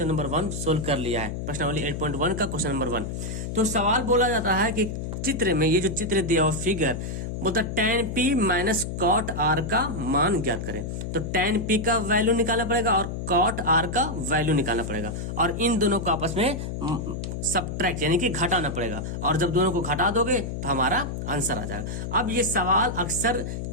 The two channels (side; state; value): left; noise; hum, 5 dB below the sound